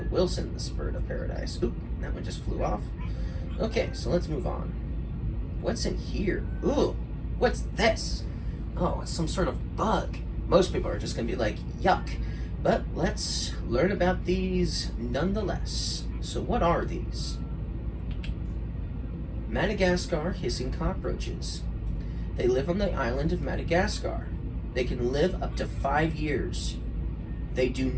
Wilson's bird of paradise. Oop, that one just flew off. Okay, so let's move on. What's in here? Ooh, what's this? Oh, it's some sort of bug. Most people are just gonna be like, yuck. But let's learn about these nonetheless. So what are these? Madagascar hissing cockroaches. They live on the island of Madagascar. They can live up to 5 years. They do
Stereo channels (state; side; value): identical; both; correlation 1.00